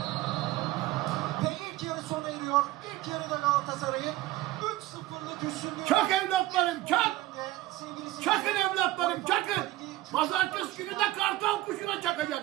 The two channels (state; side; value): quieter; left; 16.5 dB